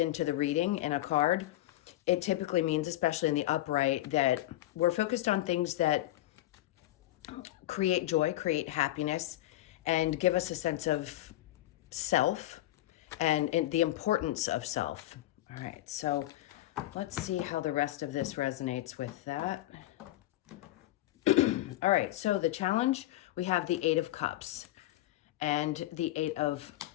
the reading in a card, it typically means, especially in the upright, that we're focused on things that create joy, create happiness, and give us a sense of self and the importance of self. All right, so let's see how the rest of this resonates with that. All right, so the challenge, we have the Eight of Cups and the Eight of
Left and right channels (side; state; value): right; quieter; 15.4 dB